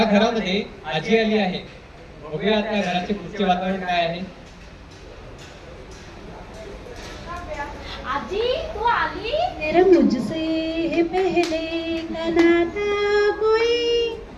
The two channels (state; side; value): identical; both; correlation 1.00